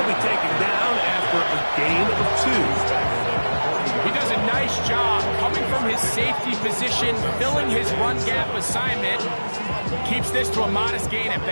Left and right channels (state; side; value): inverted; both; correlation -1.00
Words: be taken down after a gain of 2. He does a nice job coming from his safety position, filling his run gap assignment. Keeps this to a modest gain at